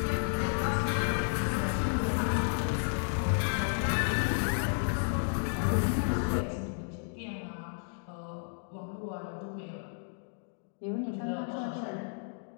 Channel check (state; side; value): silent; right; digital silence